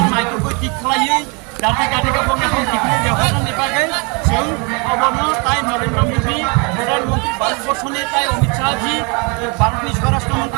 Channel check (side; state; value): left; quieter; 31.7 dB